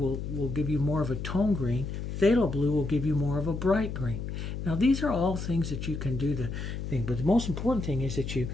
will give you more of a tone green. Phthalo blue will give you more of a bright green. Now these are all things that you can do the thing, but the most important thing is that you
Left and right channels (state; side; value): noise; left; hum, 5 dB below the sound